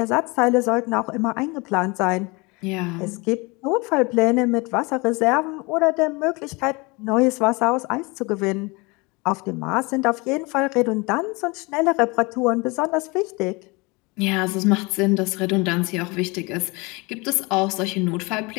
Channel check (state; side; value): quieter; right; 26.6 dB